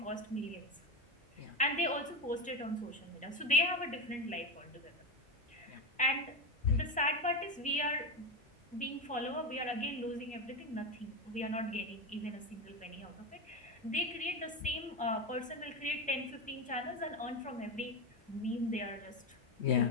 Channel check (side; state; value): both; normal; correlation 0.16